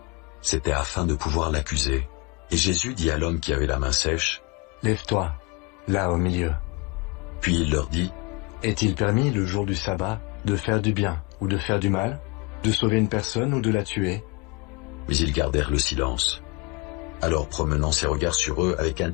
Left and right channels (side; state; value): right; quieter; 26.1 dB